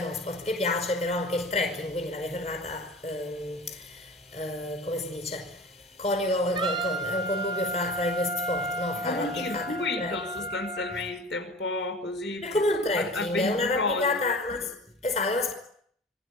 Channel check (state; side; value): normal; both; correlation 0.37